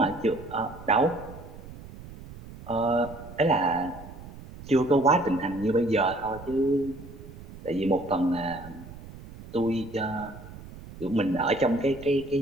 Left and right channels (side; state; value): right; noise; rumble, 16 dB below the sound